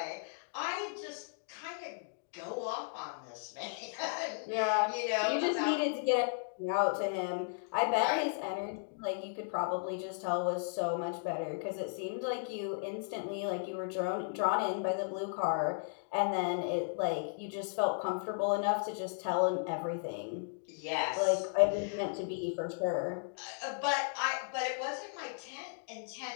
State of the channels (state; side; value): silent; right; digital silence